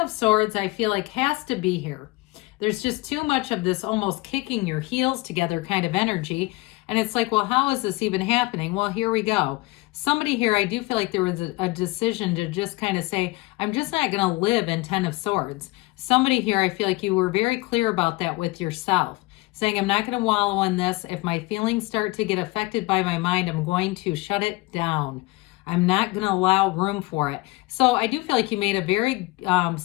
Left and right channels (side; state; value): right; quieter; 22.3 dB